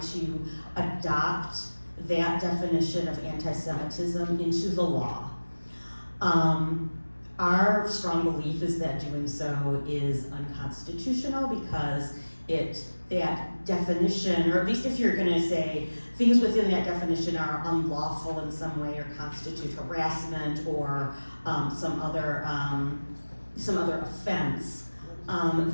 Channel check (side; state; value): both; inverted; correlation -1.00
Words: adopt that definition of anti-Semitism into the law. Our strong belief is that doing so is unconstitutional because that definition, or at least if you're gonna say things within that definition are unlawful in some way or constitute harassment or some other offense,